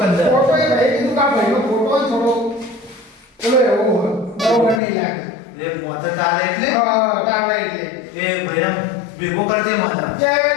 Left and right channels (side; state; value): right; drops out; at 4.8 s